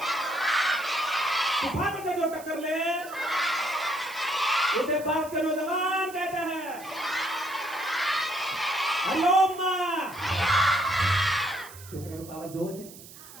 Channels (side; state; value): right; noise; hiss, 17 dB below the sound